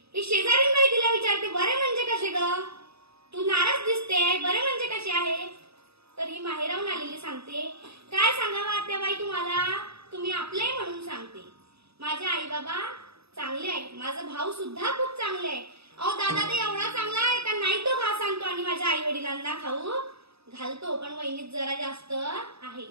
ही शेजारीन बाई तिला विचारते, बरे म्हणजे कसे ग? तू नाराज दिसते, बरे म्हणजे कसे आहे? तर ही माहेराहून आलेली सांगते, काय सांगावं आत्याबाई तुम्हाला, तुम्ही आपले म्हणून सांगते. माझे आई बाबा चांगले आहेत, माझा भाऊ सुद्धा खूप चांगले आहे. अहो दादा ते एवढा चांगला आहे का नाही, तो घास आणतो आणि माझ्या आई वडिलांना खाऊ घालतो, पण वहिनीत जरा जास्त आहे.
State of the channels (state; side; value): late; left; 0.78 ms